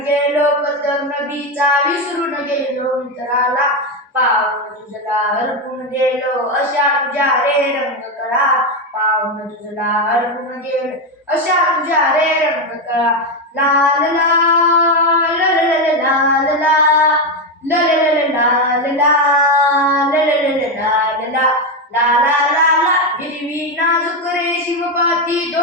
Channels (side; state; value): both; normal; correlation 0.10